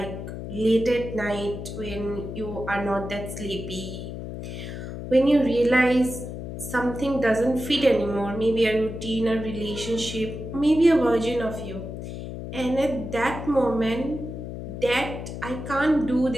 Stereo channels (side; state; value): left; noise; hum, 8 dB below the sound